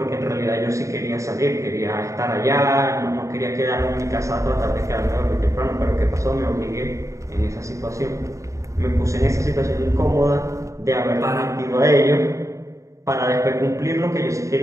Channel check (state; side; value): late; left; 0.15 ms